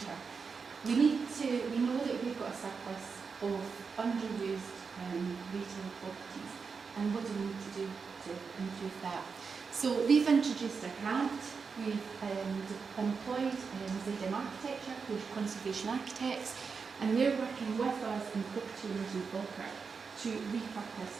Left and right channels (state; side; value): quieter; left; 5.3 dB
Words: We know that we've got a surplus of underused retail properties, and what do we need to do to improve that? So we've introduced a grant, we've employed ZM Architecture, who are conservation architects, and they're working with us and property owners in Falkirk to repurpose